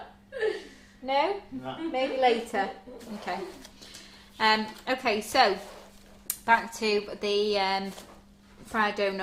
No? No. Maybe later. Okay. Okay, so back to the fried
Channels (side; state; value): both; identical; correlation 1.00